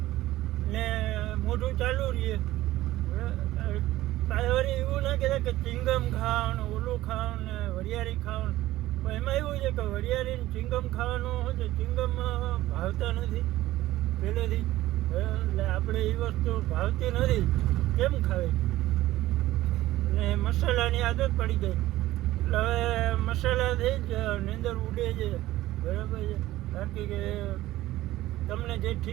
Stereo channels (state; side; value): quieter; left; 16.0 dB